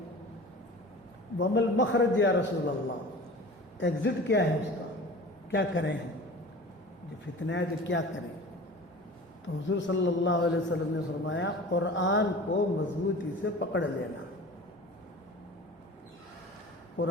ومل مخرج یا رسول اللہ، ایگزٹ کیا ہے اس کا، کیا کریں جو فتنہ ہے تو کیا کریں؟ تو حضور صلی اللہ علیہ وسلم نے فرمایا قرآن کو مضبوطی سے پکڑ لینا،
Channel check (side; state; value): both; normal; correlation 0.39